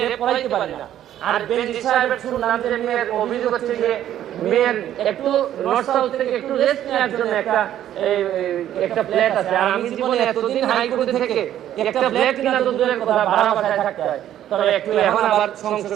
পড়াইতে পারি না। আর বেনজি সাহেবের শুনলাম যে মেয়ের অভিযোগ হচ্ছে যে মেয়ের একটু নর্থ সাউথ থেকে একটু রেস্ট নেওয়ার জন্য একটা ফ্ল্যাট আছে। আর আমি জীবনে এতদিন হাইকোর্টে থেকে একটা ফ্ল্যাট কিনা তো দূরের কথা, ভাড়া বাসায় থাকতে হয়। তবে একটু এখন আবার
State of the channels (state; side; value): quieter; left; 11.6 dB